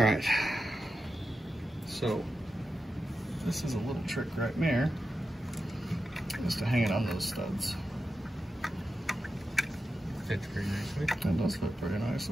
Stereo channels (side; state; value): both; normal; correlation 0.90